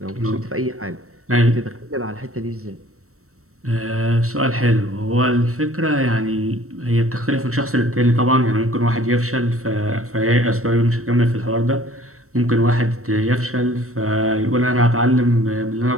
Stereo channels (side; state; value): left; late; 0.63 ms